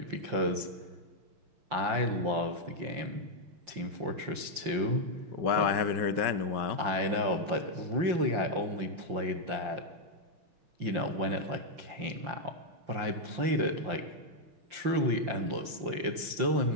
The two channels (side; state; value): left; late; 5.8 ms